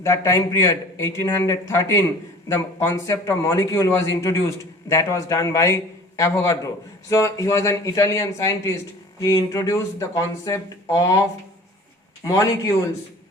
time period 1813, the concept of molecule was introduced. That was done by Avogadro. So he was an Italian scientist. He introduced the concept of molecules,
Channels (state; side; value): normal; both; correlation 0.45